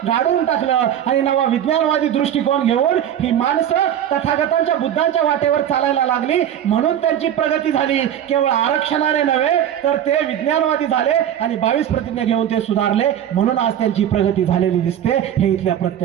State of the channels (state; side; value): quieter; left; 10.3 dB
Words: गाडून टाकलं आणि नवा विज्ञानवादी दृष्टिकोन घेऊन ही माणसं तथागतांच्या, बुद्धांच्या वाटेवर चालायला लागली. म्हणून त्यांची प्रगती झाली. केवळ आरक्षणाने नव्हे तर ते विज्ञानवादी झाले आणि 22 प्रतिज्ञा घेऊन ते सुधारले. म्हणून आज त्यांची प्रगती झालेली दिसते. हे इथल्या